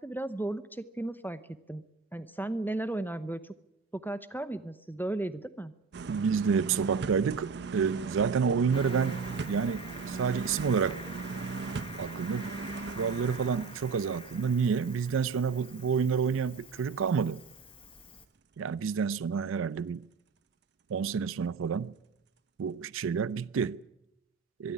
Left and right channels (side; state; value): left; quieter; 5.3 dB